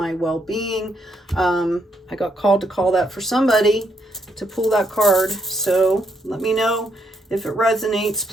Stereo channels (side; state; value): both; normal; correlation 0.76